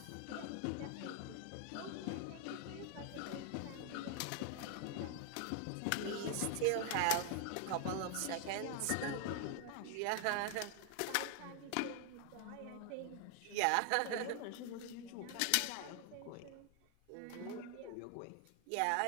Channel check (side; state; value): both; different; correlation 0.00